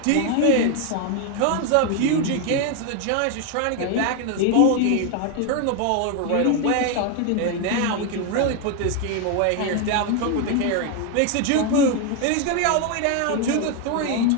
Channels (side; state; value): both; different; correlation 0.01